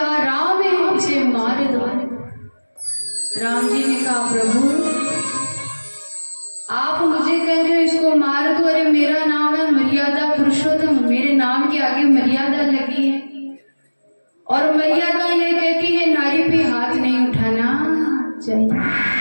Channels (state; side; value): inverted; both; correlation -1.00